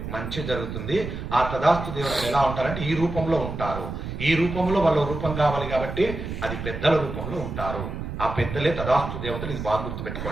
మంచి జరుగుతుంది. ఆ తదాస్తు దేవతలు ఎలా ఉంటారంటే ఈ రూపంలో ఉంటారు. ఈ రూపంలో వాళ్ళ రూపం కావాలి కాబట్టి అది పెద్దల రూపంలో ఉంటారు. ఆ పెద్దలే తదాస్తు దేవతలు. ఇది బాగా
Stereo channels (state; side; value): noise; right; rumble, 6 dB below the sound